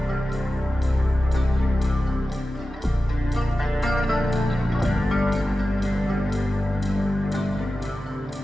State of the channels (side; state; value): both; normal; correlation 0.94